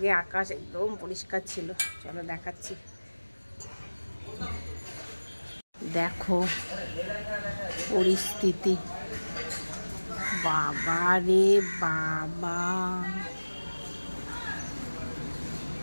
আকাশ একদম পরিষ্কার ছিল, চলো দেখাচ্ছি। দেখো পরিস্থিতি, বাবা রে বাবা,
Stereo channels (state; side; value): inverted; both; correlation -1.00